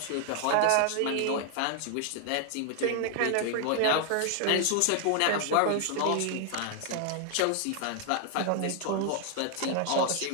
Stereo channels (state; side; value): different; both; correlation 0.00